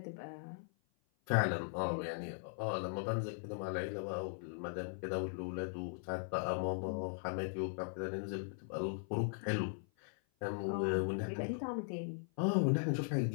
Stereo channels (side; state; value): right; silent; 52 dB below the other